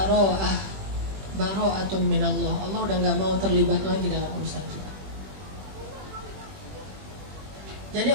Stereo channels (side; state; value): left; late; 21 ms